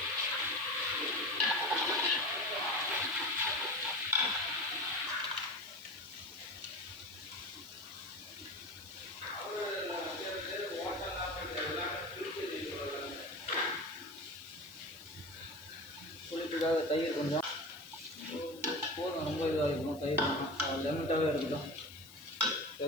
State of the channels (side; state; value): left; noise; hiss, 20 dB below the sound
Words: புளிப்புக்காக தயிர் கொஞ்சம் போதும். ரொம்ப இதாக இருக்கணும். தயிர் லெமட்டாகவே இருக்கட்டும்.